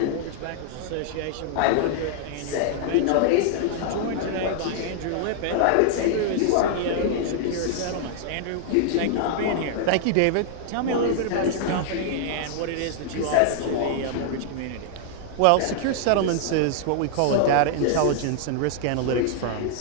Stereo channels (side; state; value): both; different; correlation -0.01